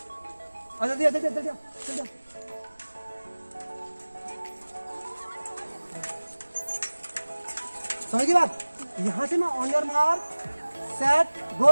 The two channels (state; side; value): inverted; both; correlation -1.00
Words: अच्छा दिया दिया दिया दिया। समझ गई बात? यहाँ से मैं on your mark set